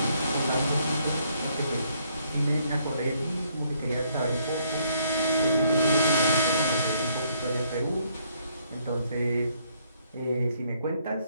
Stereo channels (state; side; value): inverted; both; correlation -0.69